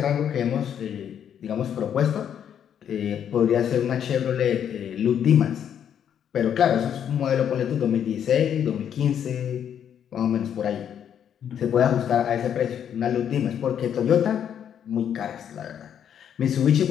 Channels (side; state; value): right; quieter; 9.0 dB